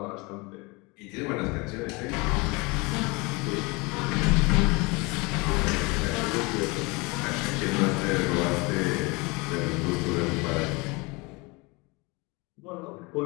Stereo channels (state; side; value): quieter; right; 26.5 dB